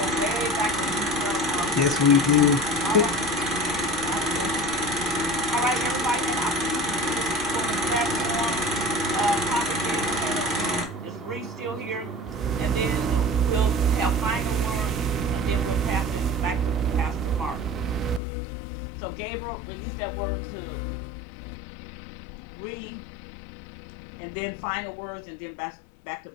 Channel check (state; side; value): drops out; right; at 18.2 s